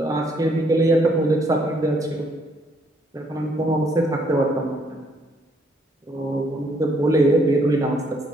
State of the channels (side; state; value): both; normal; correlation 0.68